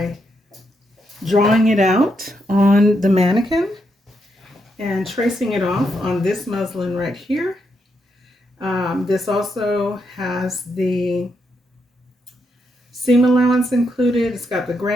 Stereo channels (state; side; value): normal; both; correlation 0.81